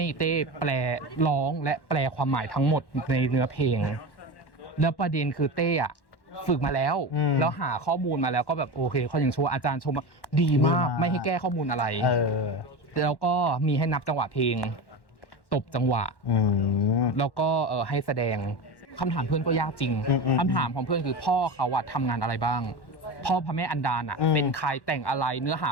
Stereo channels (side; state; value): right; late; 1.1 ms